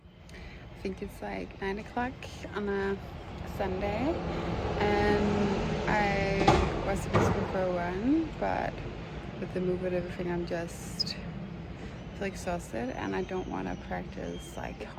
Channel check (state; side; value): identical; both; correlation 1.00